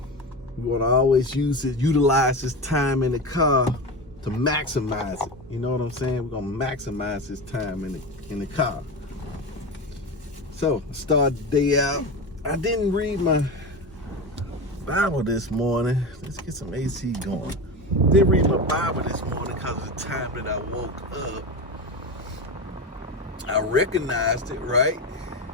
We want to always utilize this time in the car to maximize it. You know what I'm saying? We're going to maximize this time in the car. So, start the day out. I didn't read my Bible this morning. Let's get some AC going. Didn't read my Bible this morning because of the time that I woke up. I recognized it, right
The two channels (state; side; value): normal; both; correlation 0.23